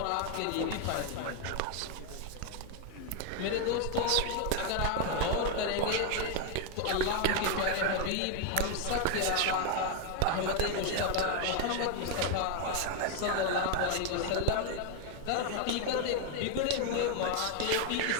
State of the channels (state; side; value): different; both; correlation 0.01